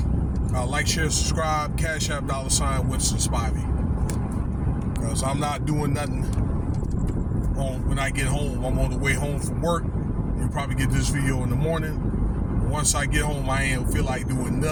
Like, share, subscribe, Cash App, $ Winston Spivey. Because I'm not doing nothing when I get home. I'm on the way home from work. You'll probably get this video in the morning. Once I get home, I ain't feel like doing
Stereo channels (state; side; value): identical; both; correlation 1.00